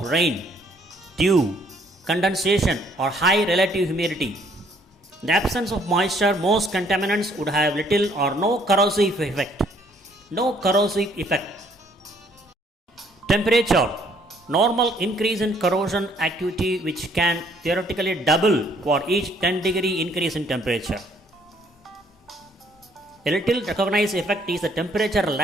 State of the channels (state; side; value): normal; both; correlation 0.64